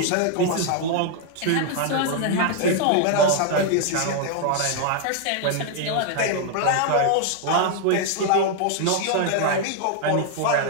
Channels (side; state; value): both; different; correlation 0.00